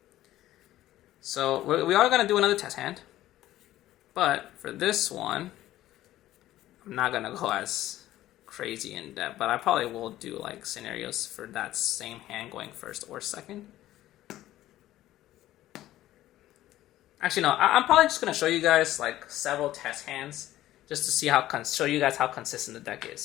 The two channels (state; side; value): quieter; right; 14.4 dB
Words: So we are gonna do another test hand. But for this one, I'm not gonna go as crazy in depth, but I probably will do like scenarios for that same hand going first or second. Actually, no, I'm probably just gonna show you guys like several test hands just to see show you guys how consistent the deck